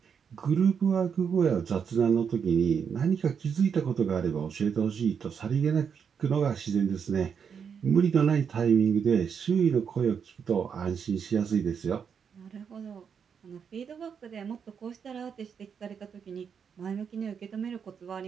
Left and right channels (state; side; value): quieter; left; 6.9 dB